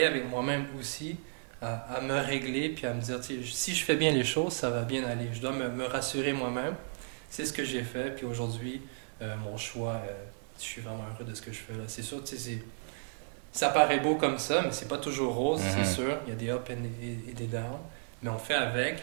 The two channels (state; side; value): silent; left; digital silence